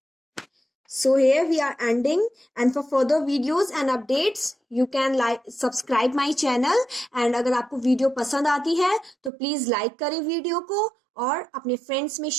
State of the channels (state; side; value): drops out; left; at 9.3 s